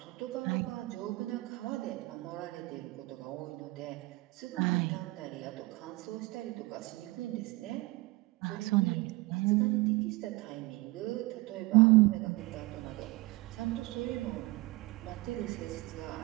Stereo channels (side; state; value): left; quieter; 21.6 dB